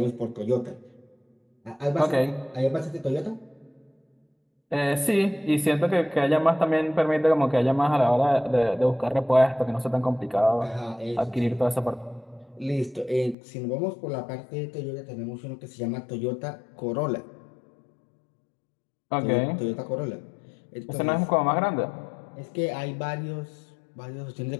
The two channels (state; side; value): drops out; right; at 13.4 s